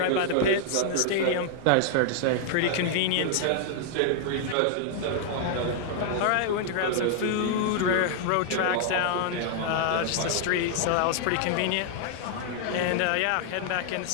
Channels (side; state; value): both; different; correlation 0.00